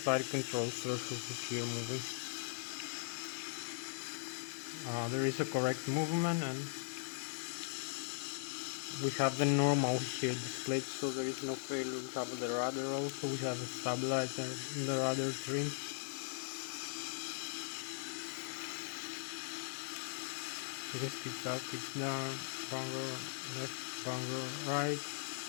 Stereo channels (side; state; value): right; silent; digital silence